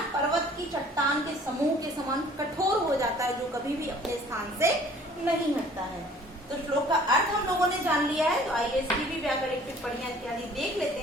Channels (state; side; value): normal; both; correlation 0.53